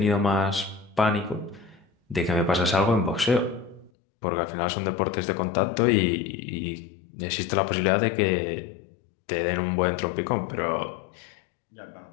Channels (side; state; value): right; drops out; at 3.9 s